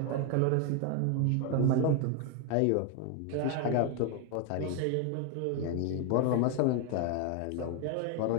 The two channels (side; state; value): both; different; correlation 0.01